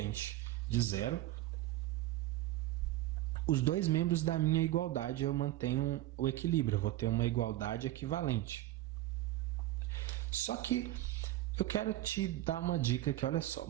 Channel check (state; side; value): quieter; left; 15.5 dB